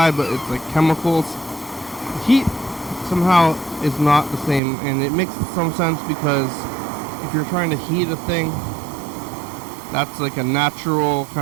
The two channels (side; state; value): left; drops out; at 4.6 s